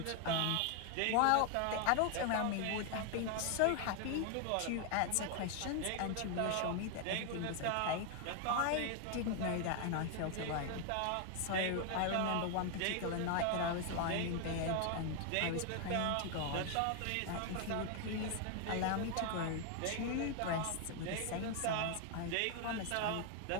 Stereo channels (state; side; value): different; both; correlation 0.00